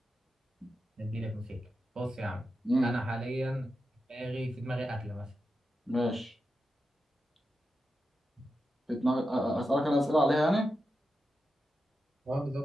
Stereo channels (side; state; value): both; normal; correlation 0.89